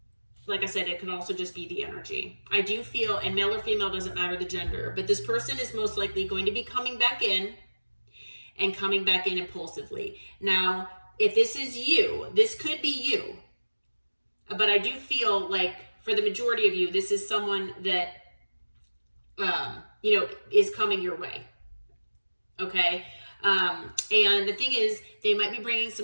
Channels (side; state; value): both; inverted; correlation -1.00